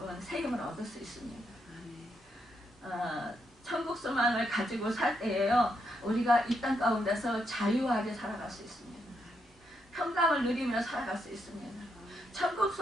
세임을 얻을 수 있습니다. 천국 소망을 가지고 살 때에요 우리가 이 땅 가운데서 자유하게 살아갈 수 있습니다. 평강을 누리며 살아갈 수 있습니다. 천국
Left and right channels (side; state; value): both; normal; correlation 0.80